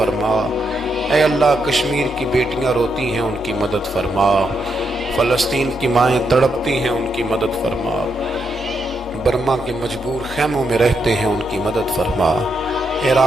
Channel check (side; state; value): both; normal; correlation 0.81